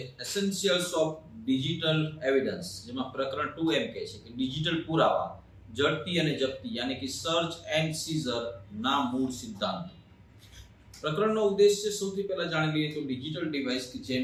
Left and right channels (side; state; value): both; identical; correlation 1.00